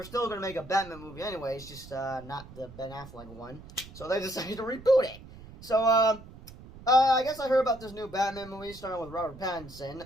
still going to make a Batman movie anyways, just not the Ben Affleck one. So they decided to reboot it. So, I guess I heard about this new Batman movie starting with Robert Pattinson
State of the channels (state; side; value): noise; right; rumble, 17 dB below the sound